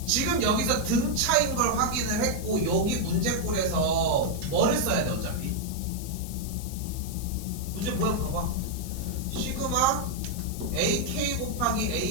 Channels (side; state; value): left; noise; hiss, 13 dB below the sound